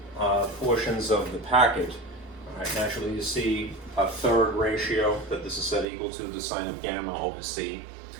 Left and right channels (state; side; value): drops out; left; at 5.9 s